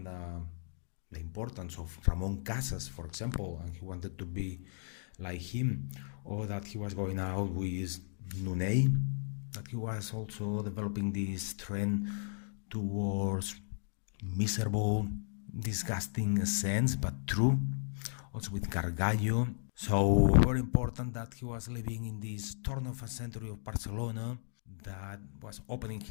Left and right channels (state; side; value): silent; right; digital silence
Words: the importance of Ramon Casas, for example, and he wanted to be like him, or that he was going out with Nunet, that he was also developing this trend towards miserable, disgusting sense, but true, also with Gargallo. So very important that he was living in this turn of a century of Barcelona, that was opening